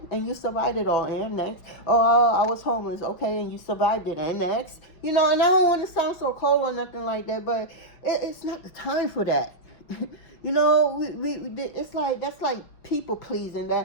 you survived it all. And next, I was homeless. Okay, and you survived it. And next, and I don't want to sound so cold or nothing like that, but it's not the time for that. It's like, that's like people pleasing.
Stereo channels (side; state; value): right; late; 5.7 ms